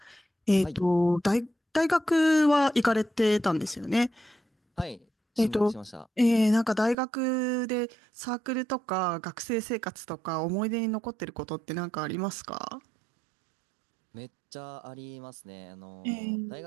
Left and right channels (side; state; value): left; drops out; at 7.0 s